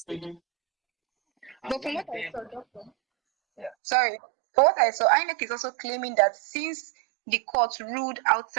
taken. But from what I saw, Doctor. Yeah. Sorry. From what I saw, INEC is also claiming that since the court ruled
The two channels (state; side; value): drops out; left; at 3.8 s